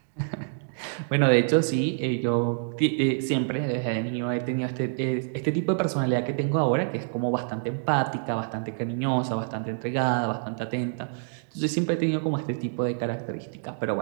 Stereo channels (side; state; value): left; silent; digital silence